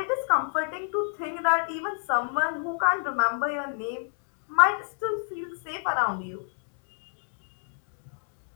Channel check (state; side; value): silent; right; digital silence